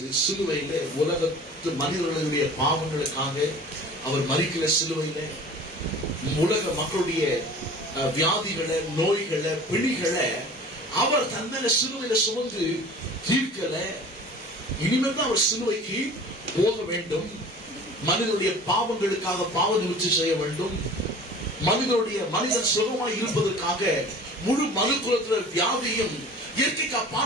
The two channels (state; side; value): normal; both; correlation 0.43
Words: சிலுவையில உலகத்து மனிதர்களுடைய பாவங்களுக்காக அவர் மரிக்கல. சிலுவையில உலக மக்களுடைய வியாதிகளை, நோய்களை, பிணிகளை அவர் தன்மையில சிலுவையில சுமந்து தீர்க்கல. இனிமேல் தான் அவர் சிலுவைக்கு போக வேண்டும். மனிதனுடைய பாவங்களுக்காக பாவ நிவர்த்தி செய்ய வேண்டும். மனிதன் சுகமாய் இருப்பதற்காக முழு மனு குலத்தில வியாதியும் இயற்கைக்கு